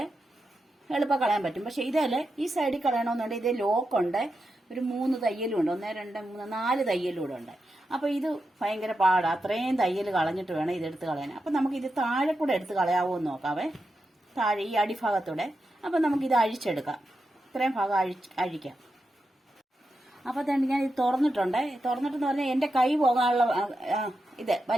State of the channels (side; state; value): both; normal; correlation 0.88